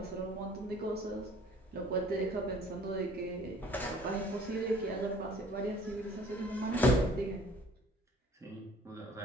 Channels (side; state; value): both; normal; correlation 0.54